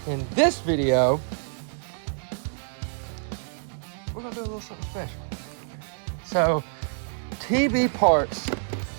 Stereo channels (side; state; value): left; silent; 60 dB below the other